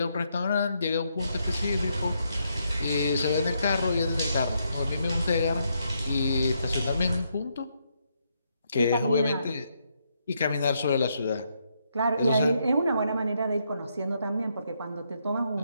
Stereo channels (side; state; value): both; inverted; correlation -0.77